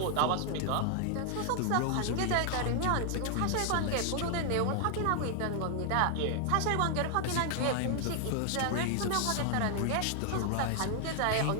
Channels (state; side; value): different; both; correlation 0.00